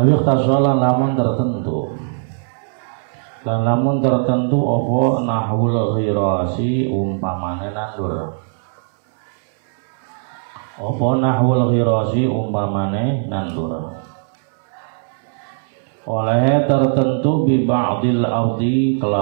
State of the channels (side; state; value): left; silent; 64 dB below the other